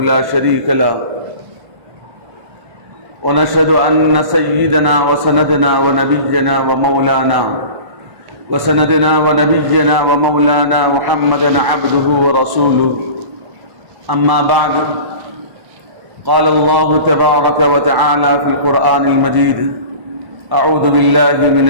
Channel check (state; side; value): late; left; 1.1 ms